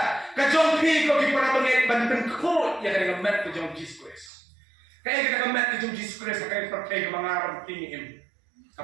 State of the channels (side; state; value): left; drops out; at 4.3 s